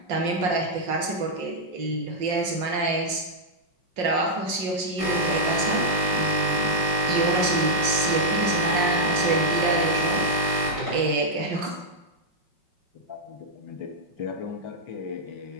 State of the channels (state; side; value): late; left; 5.6 ms